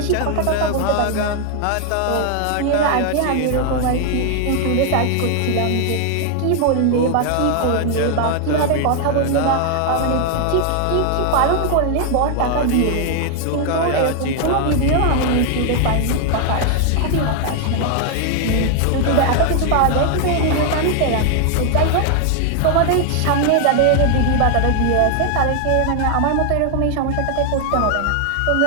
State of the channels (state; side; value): different; both; correlation 0.00